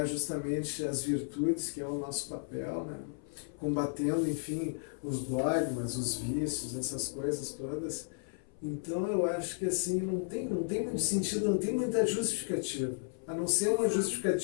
justamente as virtudes, que é o nosso papel, né? Combatendo, enfim, os dogmas, os vícios, essas coisas todas. Então eu acho que assim, não tem muito sentido, não tem muita justificativa, a não ser uma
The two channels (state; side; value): silent; right; 55 dB below the other